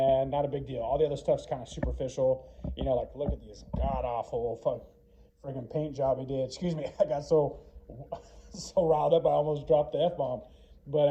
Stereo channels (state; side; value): identical; both; correlation 1.00